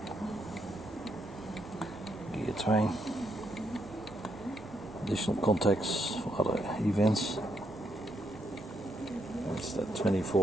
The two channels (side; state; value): both; normal; correlation 0.77